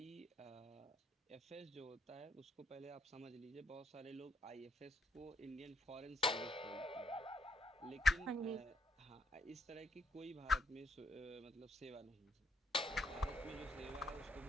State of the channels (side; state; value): both; normal; correlation 0.75